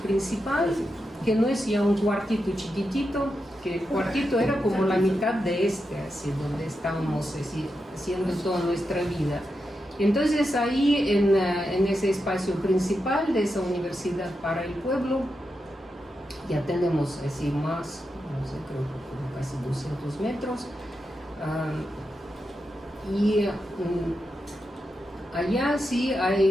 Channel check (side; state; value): both; normal; correlation 0.87